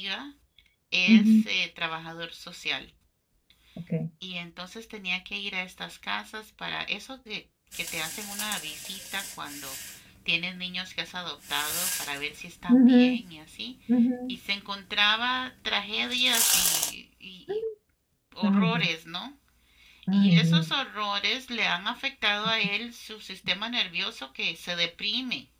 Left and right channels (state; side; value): identical; both; correlation 1.00